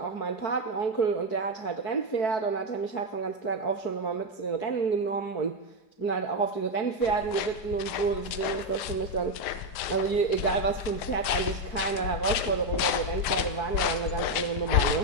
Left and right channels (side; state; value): right; late; 5.1 ms